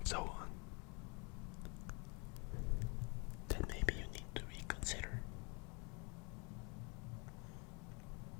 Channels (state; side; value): quieter; right; 31.8 dB